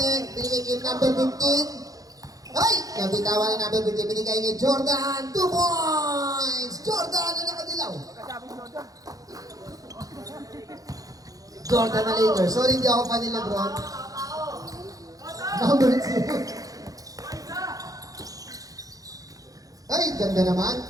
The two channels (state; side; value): late; left; 0.17 ms